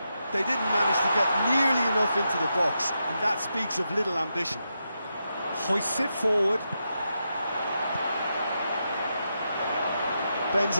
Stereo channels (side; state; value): both; inverted; correlation -0.85